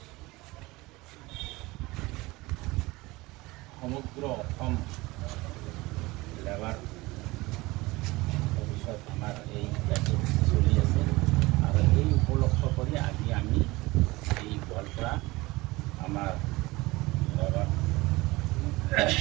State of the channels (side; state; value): left; quieter; 21.4 dB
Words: সমগ্ৰ অসম লেবাৰ অফিচত আমাৰ এই কাৰ্যসূচী চলি আছে আৰু এই উপলক্ষ কৰি আজি আমি এই গোৱালপাৰা আমাৰ লেবাৰ